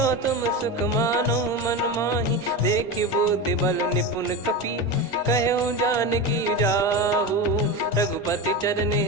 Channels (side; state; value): both; normal; correlation 0.22